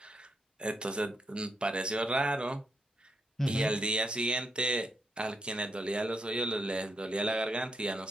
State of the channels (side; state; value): both; normal; correlation 0.80